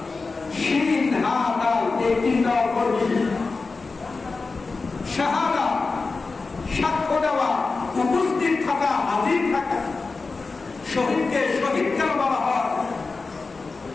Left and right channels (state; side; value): quieter; right; 4.0 dB